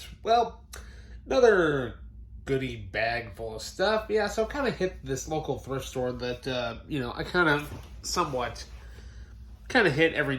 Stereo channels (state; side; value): identical; both; correlation 1.00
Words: another goodie bag full of stuff. Yeah, so I kind of hit this local thrift store that, I kind of somewhat hit every